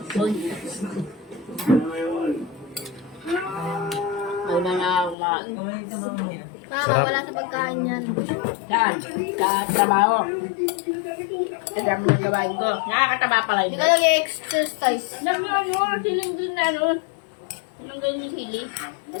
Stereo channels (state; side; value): drops out; right; at 5.2 s